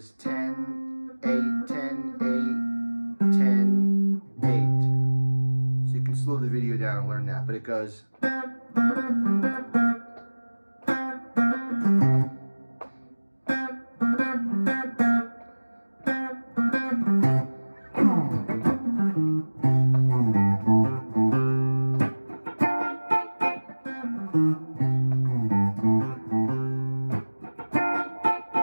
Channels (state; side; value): inverted; both; correlation -1.00